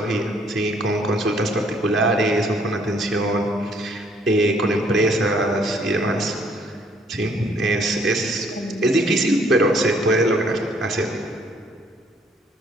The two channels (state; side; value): normal; both; correlation 0.64